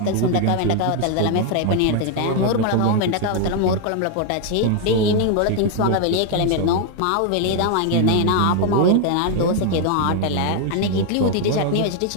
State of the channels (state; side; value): different; both; correlation 0.00